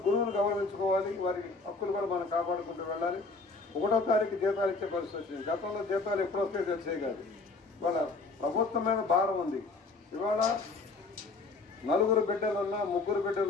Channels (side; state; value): right; quieter; 3.7 dB